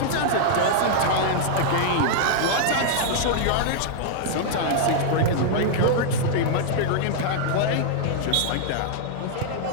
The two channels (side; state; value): both; different; correlation -0.01